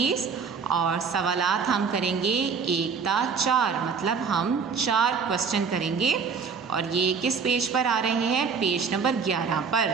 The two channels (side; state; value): left; quieter; 5.7 dB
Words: और सवालात हम करेंगे 1 ता 4, मतलब हम 4 क्वेश्चन करेंगे और ये किस पेज पर आ रहे हैं, पेज नंबर 11 पर।